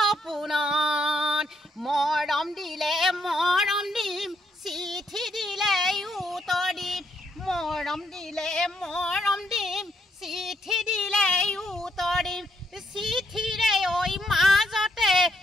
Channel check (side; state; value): both; normal; correlation 0.74